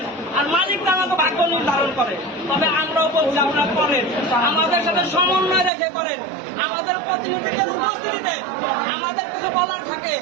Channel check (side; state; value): left; drops out; at 5.7 s